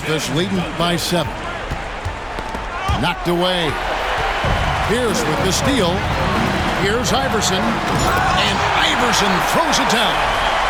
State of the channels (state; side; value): identical; both; correlation 1.00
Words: leading by 7. Knocked away. Pierce with the steal. Here's Iverson. And Iverson throws it down.